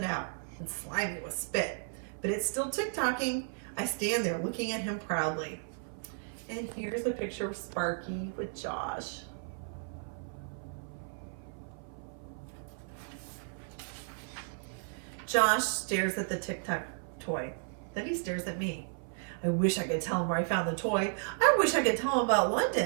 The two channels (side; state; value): left; silent; 55 dB below the other